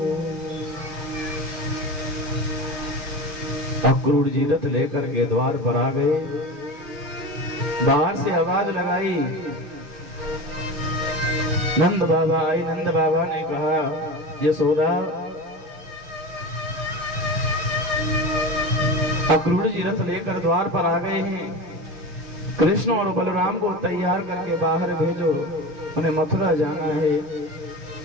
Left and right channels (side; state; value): left; late; 6.4 ms